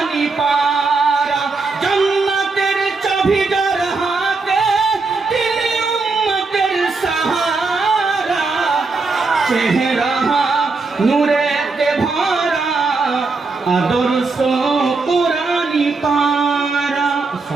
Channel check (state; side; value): quieter; left; 4.0 dB